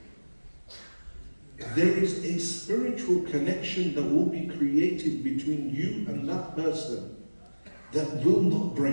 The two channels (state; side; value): inverted; both; correlation -1.00